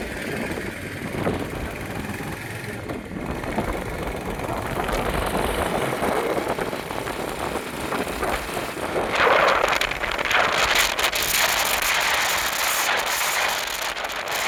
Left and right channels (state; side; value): identical; both; correlation 1.00